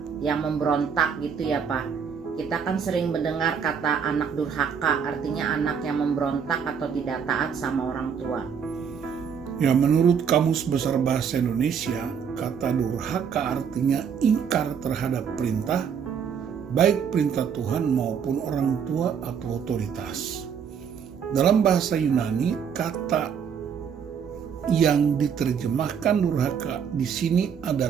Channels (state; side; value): quieter; left; 7.1 dB